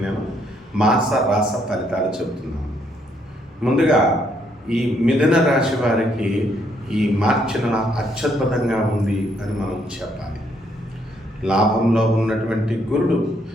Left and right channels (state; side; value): normal; both; correlation 0.71